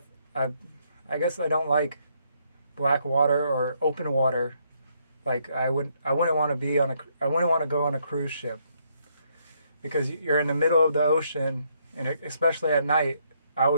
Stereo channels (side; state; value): both; inverted; correlation -0.72